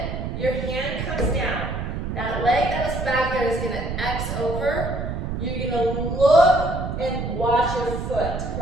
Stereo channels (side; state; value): right; noise; rumble, 4 dB below the sound